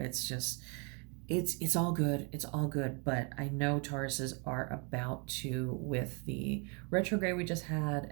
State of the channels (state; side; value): quieter; left; 34.8 dB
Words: It's all good. It's all good. But I know Tauruses are about to, with the retrograde we just had